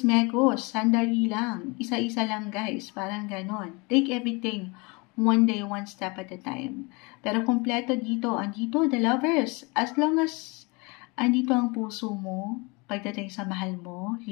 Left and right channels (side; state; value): right; quieter; 28.0 dB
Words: sandali lang, isa-isa lang guys, parang ganon. Take everything one day, one step at a time. Pero kompleto dito, andito, the lovers. As long as andito ang puso mo, pagdating sa mahal mo,